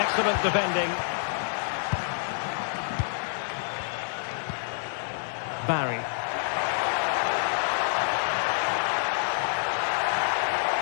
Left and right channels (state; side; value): silent; right; digital silence